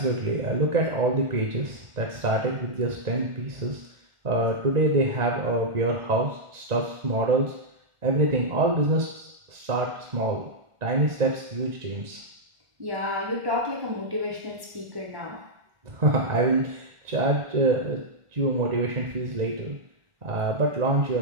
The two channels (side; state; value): left; late; 1.5 ms